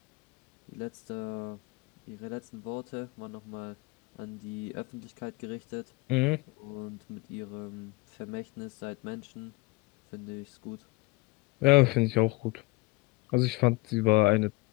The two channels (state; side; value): quieter; right; 23.1 dB